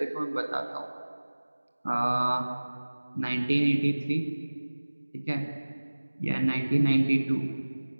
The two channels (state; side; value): inverted; both; correlation -1.00